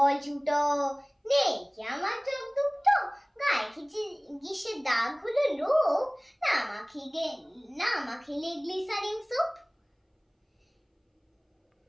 ছোটো, নেই কি আমার চোখ দুটো, গায়ে খিচে গিসের দাগ হলো লোক, না মাখিলে গ্লিসারিন সোপ।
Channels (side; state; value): both; identical; correlation 1.00